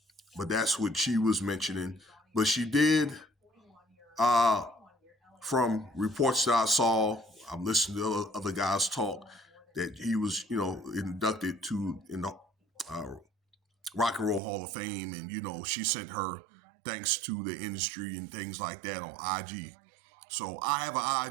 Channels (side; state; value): left; drops out; at 14.4 s